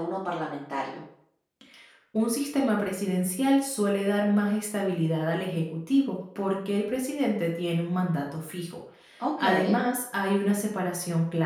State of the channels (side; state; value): both; identical; correlation 1.00